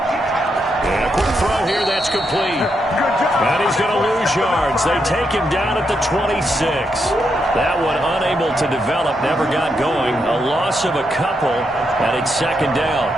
And a quick throw here, that's complete. And he's going to lose yards. They take him down at the 26. That one unable to develop, never got going. A loss of a couple, and it's 2nd down.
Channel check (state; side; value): normal; both; correlation 0.81